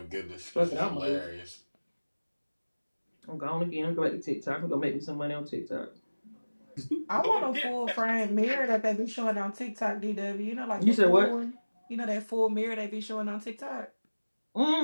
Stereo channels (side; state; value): both; inverted; correlation -1.00